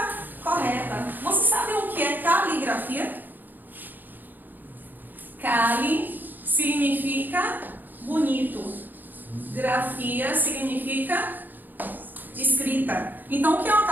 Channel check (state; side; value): late; left; 0.088 ms